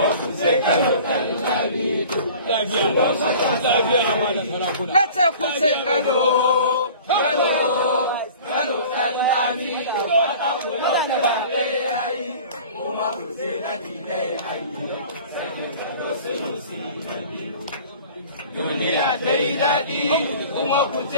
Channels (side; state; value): both; inverted; correlation -0.44